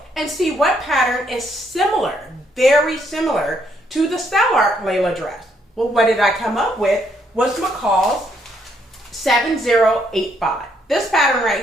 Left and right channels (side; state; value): both; normal; correlation 0.72